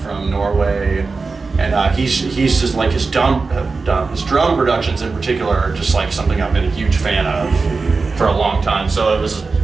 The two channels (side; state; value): left; quieter; 4.2 dB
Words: Norway. And he's just like his drum productions in particular are just like something I've been a huge fan of for a long time. So it was